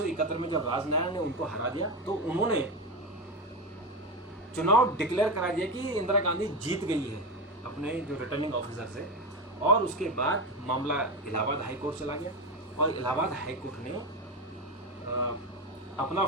में जब राजनारायण ने उनको हरा दिया तो उन्होंने चुनाव डिक्लेयर करा दिया कि इंदिरा गांधी जीत गई है अपने जो रिटर्निंग ऑफिसर से। और उसके बाद मामला इलाहाबाद हाई कोर्ट चला गया और इलाहाबाद हाई कोर्ट ने अपना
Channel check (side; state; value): both; normal; correlation 0.17